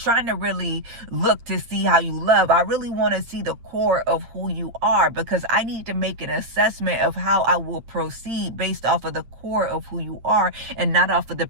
to really look to see how you love. I really want to see the core of who you are, because I need to make an assessment of how I will proceed based off of the core of who you are and not off of the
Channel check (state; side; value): late; left; 8.8 ms